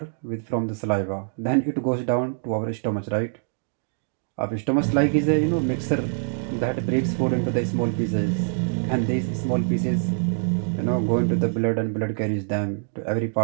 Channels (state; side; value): silent; left; digital silence